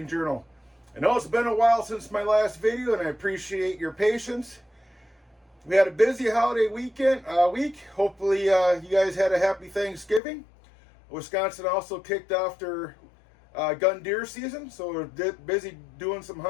Journal. I know it's been a while since my last video and I appreciate your patience. We had a busy holiday week. Hopefully you guys had a happy Thanksgiving. Wisconsin also kicked off their gun deer season, so we're busy doing some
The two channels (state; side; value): drops out; right; at 10.2 s